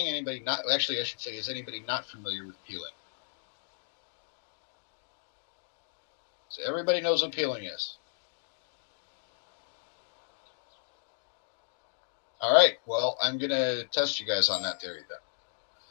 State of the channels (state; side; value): silent; right; digital silence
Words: Anybody not? Actually, I should say, is anybody not familiar with peeling? So everybody knows what peeling is. All right, well, I'm going to test you guys on that theory then.